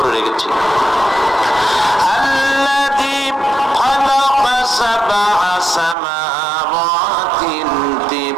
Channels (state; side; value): drops out; left; at 6.0 s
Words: রেখেছি। আল্লাযী খালাকা সাবআ সামাওয়াতিন